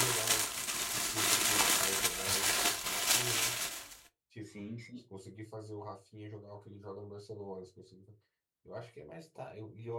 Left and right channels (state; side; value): identical; both; correlation 1.00